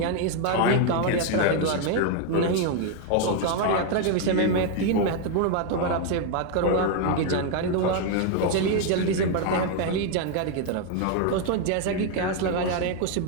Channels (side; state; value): both; different; correlation 0.01